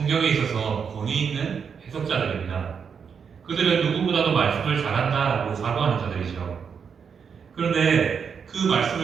있어서 권위 있는 해석자들입니다. 그들은 누구보다도 말씀을 잘한다라고 자부하는 자들이죠. 그런데 그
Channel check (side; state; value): left; quieter; 6.6 dB